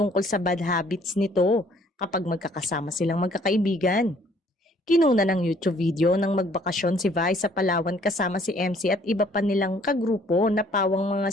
sa bad habits nito kapag magkakasama silang magkakaibigan. Kinuna ng YouTube video ng magbakasyon si Vice sa Palawan kasama si MC at iba pa nilang kagrupo na pawang mga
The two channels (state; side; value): normal; both; correlation 0.60